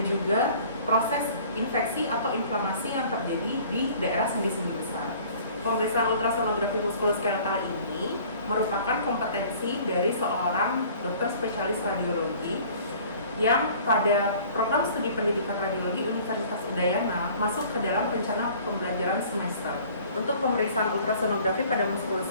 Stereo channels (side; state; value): both; inverted; correlation -0.51